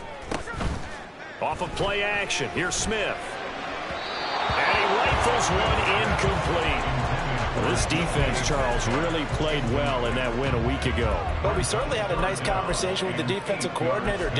Off of play action. Here's Smith. And he Rifles one incomplete. Well, this defense, Charles, really played well in that win a week ago. Well, we certainly had a nice conversation with the defensive coordinator,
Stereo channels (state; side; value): identical; both; correlation 1.00